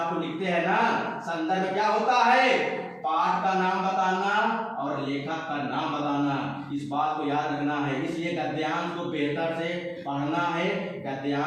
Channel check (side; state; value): both; identical; correlation 1.00